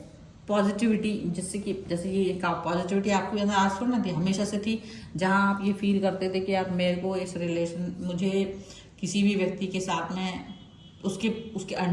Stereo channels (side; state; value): both; identical; correlation 1.00